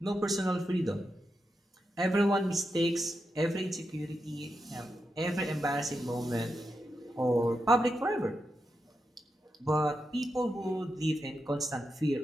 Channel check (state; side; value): normal; both; correlation 0.87